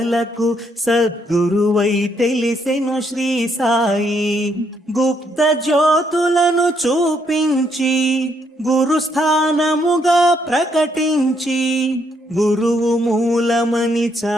సద్గురువై తెలిసెను శ్రీ సాయి. గుప్త జ్యోతులను చూపించి గురుస్థానముగా ప్రకటించి, గురువు మూలమని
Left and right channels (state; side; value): normal; both; correlation 0.73